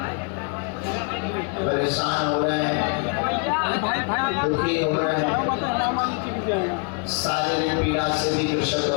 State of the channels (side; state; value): right; quieter; 35.1 dB